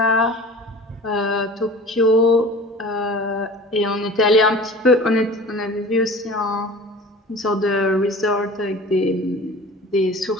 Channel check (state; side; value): normal; both; correlation 0.41